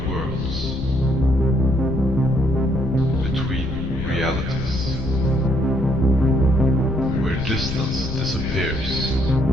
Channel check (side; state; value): left; noise; rumble, 6 dB below the sound